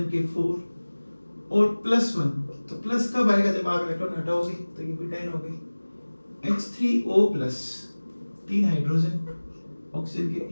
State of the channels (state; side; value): inverted; both; correlation -1.00